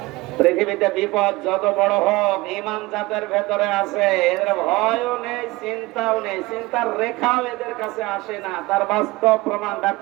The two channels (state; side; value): quieter; left; 21.2 dB